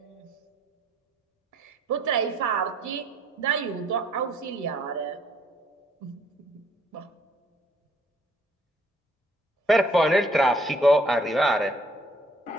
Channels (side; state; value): both; normal; correlation 0.63